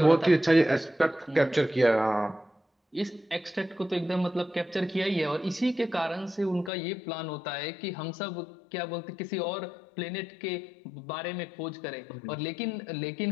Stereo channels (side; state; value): right; drops out; at 6.7 s